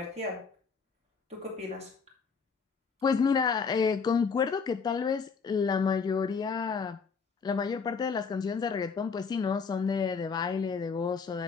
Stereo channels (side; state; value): right; quieter; 5.5 dB